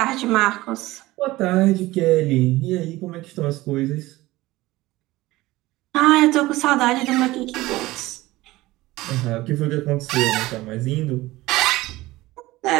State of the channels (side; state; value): left; quieter; 18.5 dB